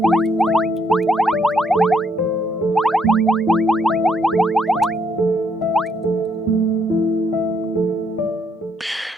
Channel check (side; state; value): both; normal; correlation 0.72